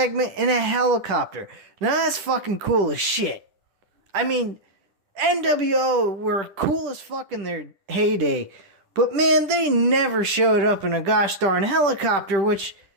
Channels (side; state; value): left; late; 10 ms